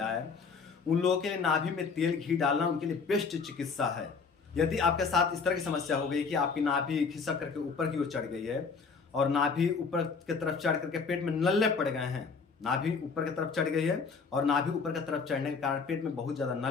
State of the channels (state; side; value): quieter; right; 5.1 dB